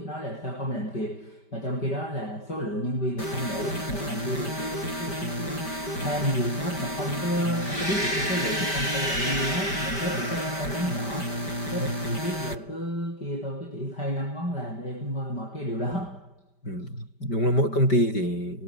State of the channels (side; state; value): right; late; 5.1 ms